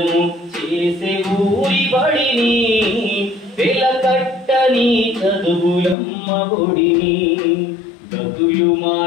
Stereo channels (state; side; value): drops out; right; at 6.0 s